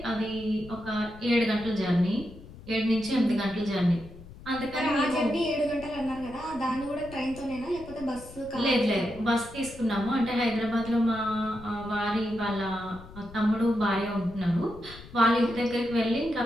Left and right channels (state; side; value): noise; left; rumble, 17 dB below the sound